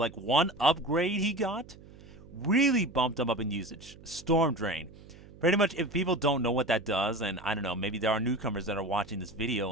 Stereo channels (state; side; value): noise; right; hum, 20 dB below the sound